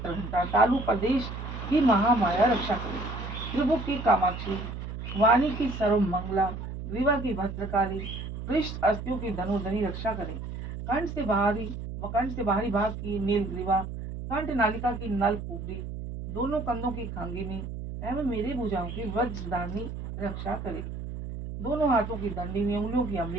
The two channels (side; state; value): right; noise; hum, 7 dB below the sound